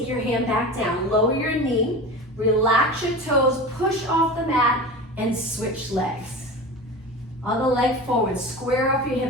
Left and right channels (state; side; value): normal; both; correlation 0.31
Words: your hand back down. Lower your knee, relax your toes, push off the mat, and switch legs. Other leg forward, square up your